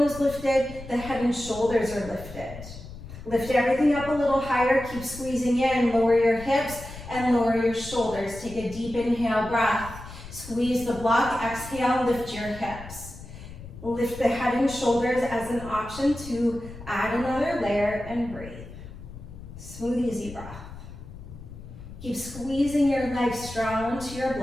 is lifted, the head and shoulders are lifted. Lift everything up a little higher, keep squeezing in, lower your hips and lower your shoulders. Take a deep inhale breath. Squeeze the block, exhale, lift your hips. Lift the head and shoulders as an option to add another layer and breathe. Smooth, easy breath. Keep squeezing your legs strong onto your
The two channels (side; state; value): left; noise; rumble, 14 dB below the sound